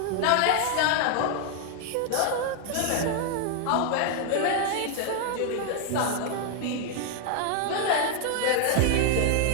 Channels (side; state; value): both; different; correlation 0.00